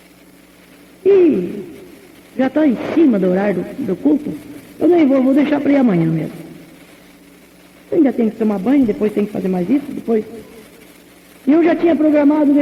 E já está em cima do horário do culto. Eu nem vou deixar para ir amanhã mesmo. Ainda tem que tomar banho, depois tem que fazer mais isso, depois... E eu já tinha programado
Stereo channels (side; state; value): both; identical; correlation 1.00